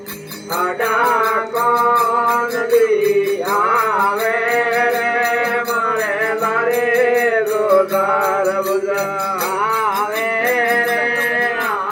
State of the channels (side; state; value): both; identical; correlation 1.00